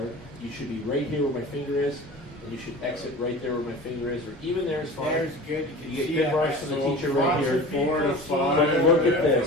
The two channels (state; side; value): normal; both; correlation 0.36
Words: You should be right here where my finger is, and you should exit right there where my finger is, or even there is fine. There's good. You get good marks from the teacher right here. 4 to 5. But look at